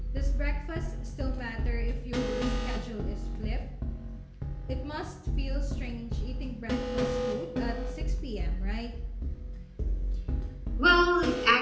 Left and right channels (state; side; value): identical; both; correlation 1.00